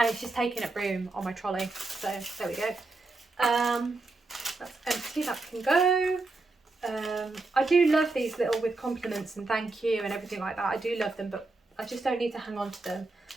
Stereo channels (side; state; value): left; quieter; 3.3 dB